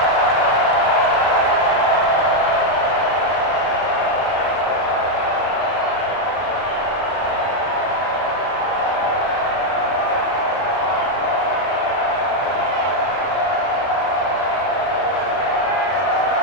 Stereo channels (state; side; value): late; right; 32 ms